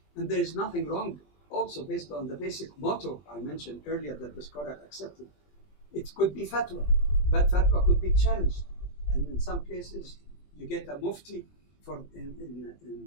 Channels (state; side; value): late; right; 20 ms